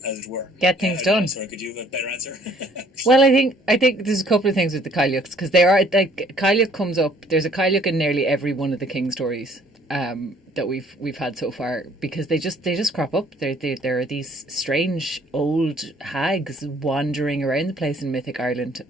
as it were. Get things done. Sorry, could you have a better answer? Well, I think there's a couple of things with the Cailleachs, because they are like, Cailleach comes up. There's a Cailleach in nearly every one of the King stories that we've had so far, because they just crop up. There are these strange old hags wandering around the place in Mythic Ireland,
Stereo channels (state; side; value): normal; both; correlation 0.60